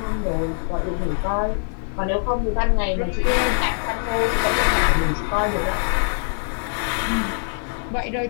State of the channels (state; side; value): silent; right; 64 dB below the other